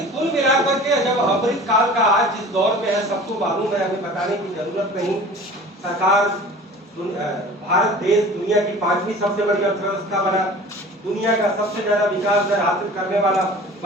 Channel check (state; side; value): normal; both; correlation 0.42